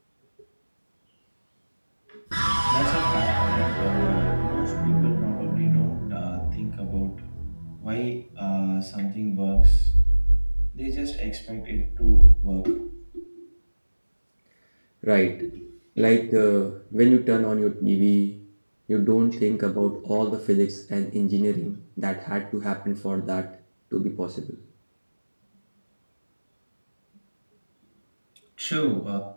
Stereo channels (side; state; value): both; inverted; correlation -1.00